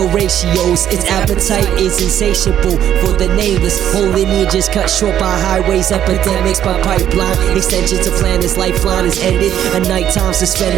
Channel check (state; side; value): quieter; left; 10.6 dB